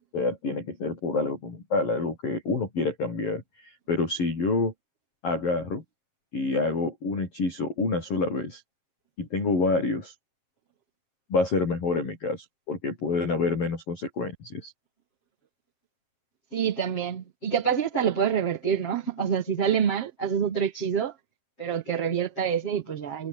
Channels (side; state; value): right; late; 7.5 ms